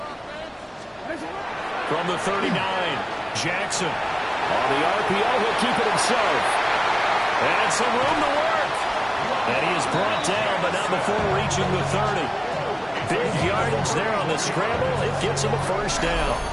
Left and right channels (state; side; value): identical; both; correlation 1.00